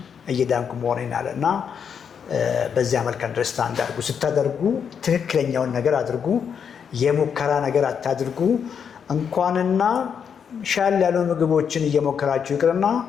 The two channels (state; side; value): quieter; right; 7.2 dB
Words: እየዳንኩ መሆኔን አለ እና በዚያ መልክ አንደርስታንድ አድርጉ። ስታደርጉ ትክክለኛውን ነገር አድርጉ። የሙከራ ነገር አታድርጉ። እንኳንና ሻል ያሉ ምግቦችን እየሞከራችሁ ይቅርና